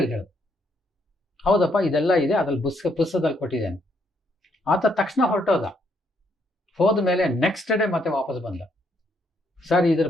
ಹೇಳಿದ, ಹೌದಪ್ಪ ಇದೆಲ್ಲ ಇದೆ, ಅದ್ರಲ್ಲಿ ಪುಸ್ತಕದಲ್ಲಿ ಕೊಟ್ಟಿದ್ದೇನೆ. ಆತ ತಕ್ಷಣ ಹೊರಟೋದ. ಹೋದ ಮೇಲೆ ನೆಕ್ಸ್ಟ್ ಡೇ ಮತ್ತೆ ವಾಪಸ್ ಬಂದ. ಸರ್ ಇದ್ರ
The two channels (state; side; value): normal; both; correlation 0.73